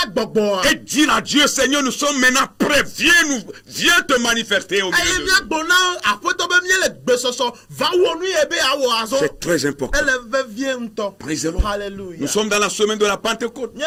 Et dire à Dieu, Seigneur, nous sommes maintenant prêts viens te manifester au milieu de nous. C'est très important. Nous sommes dans la semaine de la Pentecôte,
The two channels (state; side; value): identical; both; correlation 1.00